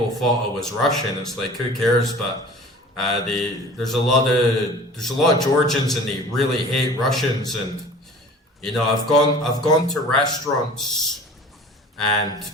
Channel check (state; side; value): normal; both; correlation 0.44